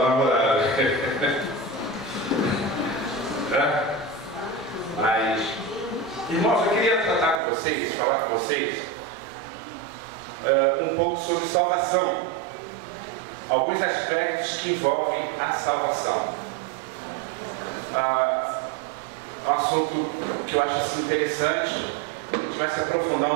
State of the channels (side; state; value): left; drops out; at 7.4 s